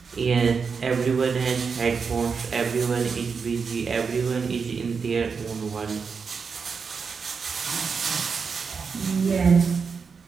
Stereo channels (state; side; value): quieter; left; 5.5 dB